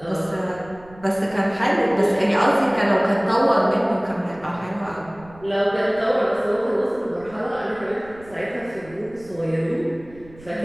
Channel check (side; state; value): right; noise; rumble, 22 dB below the sound